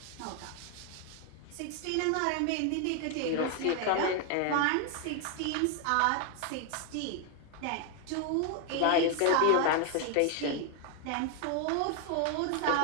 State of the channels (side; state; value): both; different; correlation 0.00